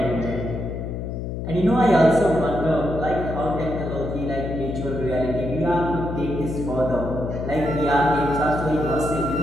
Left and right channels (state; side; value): noise; left; hum, 5 dB below the sound